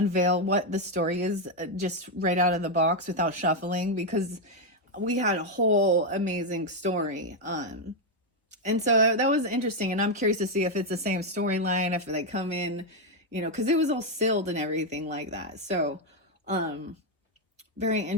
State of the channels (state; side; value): normal; both; correlation 0.02